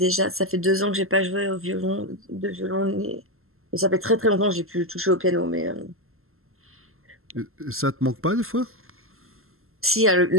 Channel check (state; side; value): late; left; 0.62 ms